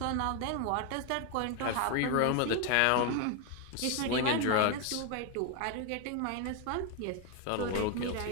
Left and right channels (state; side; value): different; both; correlation 0.01